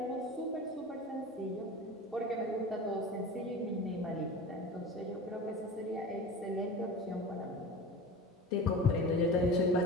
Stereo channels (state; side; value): normal; both; correlation 0.33